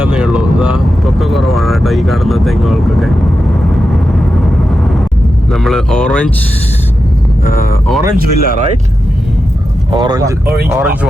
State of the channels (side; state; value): both; normal; correlation 0.90